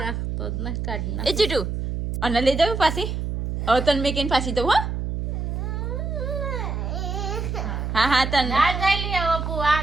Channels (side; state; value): right; noise; hum, 3 dB below the sound